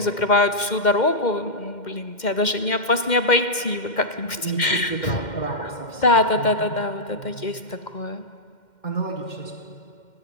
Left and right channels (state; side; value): late; right; 2.1 ms